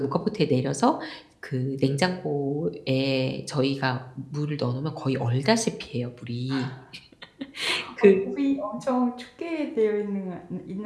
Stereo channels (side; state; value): both; identical; correlation 1.00